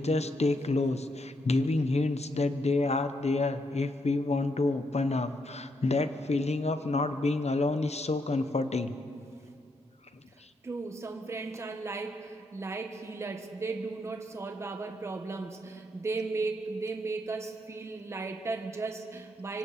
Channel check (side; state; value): both; normal; correlation 0.77